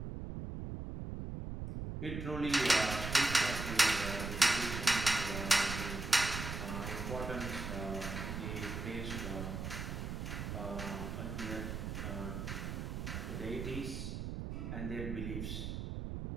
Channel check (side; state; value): right; noise; rumble, 5 dB below the sound